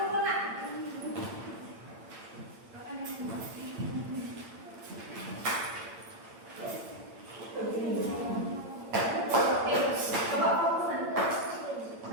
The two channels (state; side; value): late; left; 8.8 ms